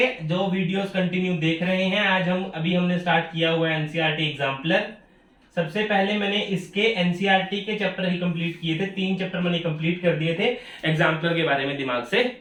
जो वीडियोस कंटिन्यू देख रहे हैं, आज हम हमने स्टार्ट किया हुआ है एनसीईआरटी एग्जाम्पलर। सबसे पहले मैंने इसके एनसीईआरटी के चैप्टर ही कंप्लीट किए थे, 3 चैप्टर मैंने कंप्लीट कर दिए थे। एग्जाम्पलर के बारे में दिमाग से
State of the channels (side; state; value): both; identical; correlation 1.00